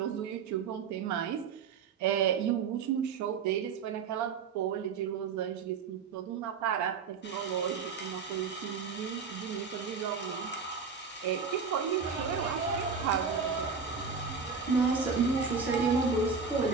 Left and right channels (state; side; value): quieter; left; 5.7 dB